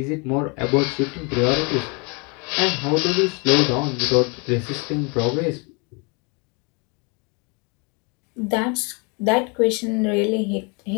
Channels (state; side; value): quieter; right; 32.1 dB